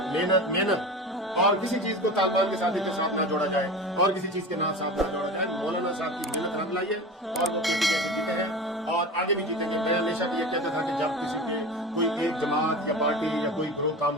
محنت محنت. اور کسی چیز کو طالبان کے ساتھ نہ جوڑا جائے, اور کسی چیز کے ساتھ نہ جوڑا جائے. مولانا صاحب کی محنت رنگ لائی ہے, اور وہ پی ٹی ایم سے جیتے ہیں, اور آگے بھی جیتیں گے. میں ہمیشہ یہ کہتا تھا کہ جب کسی کے کوئی ایک جماعت یا پارٹی یا کوئی گروہ کام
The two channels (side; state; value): both; normal; correlation 0.31